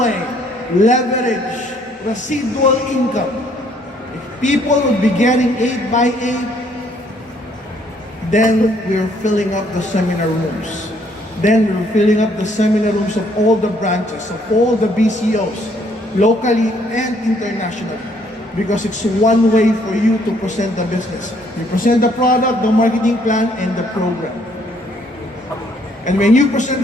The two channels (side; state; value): both; normal; correlation 0.65